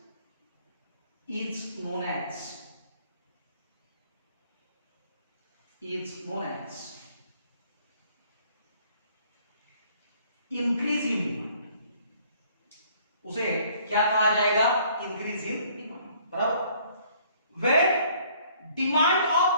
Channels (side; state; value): both; inverted; correlation -0.59